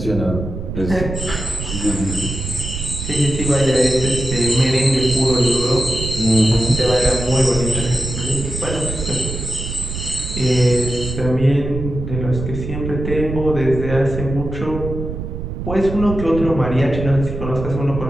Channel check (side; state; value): right; noise; rumble, 6 dB below the sound